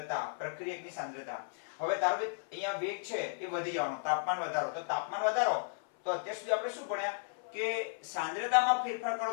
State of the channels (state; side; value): silent; right; 55 dB below the other